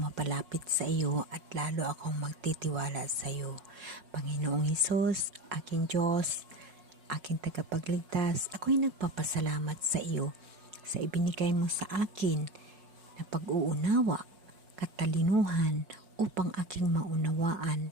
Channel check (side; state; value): left; late; 5.5 ms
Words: mapalapit sa iyo at lalo akong magtitiwala sa iyo. Panginoong Hesus, aking Diyos, aking tagapagligtas, ako'y nagpapasalamat sa iyo sa ibinigay mo sa akin na pag-uunawa, katalinuhan upang aking maunawaan